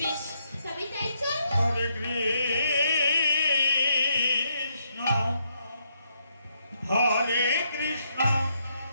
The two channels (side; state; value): both; inverted; correlation -0.77